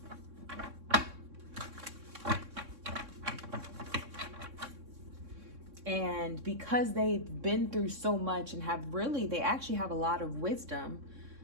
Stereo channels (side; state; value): left; late; 3.6 ms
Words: And because they've been through so much and they actually have a lot of wisdom.